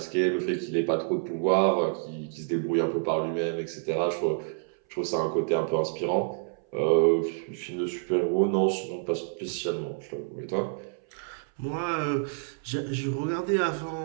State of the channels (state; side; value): silent; left; 58 dB below the other